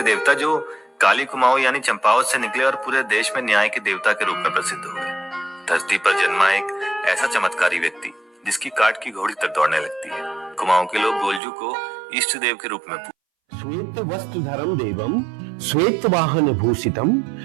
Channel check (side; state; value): left; drops out; at 11.4 s